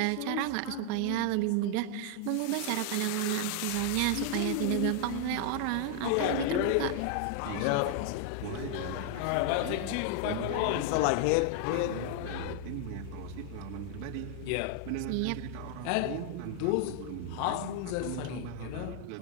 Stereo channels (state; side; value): different; both; correlation 0.00